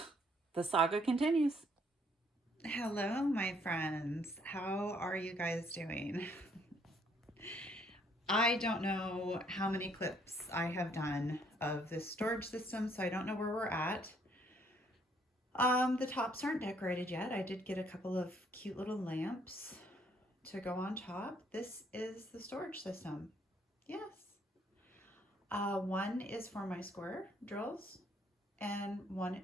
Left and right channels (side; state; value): both; normal; correlation 0.66